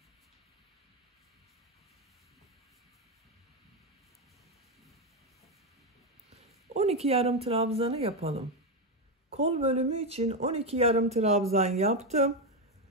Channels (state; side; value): normal; both; correlation 0.08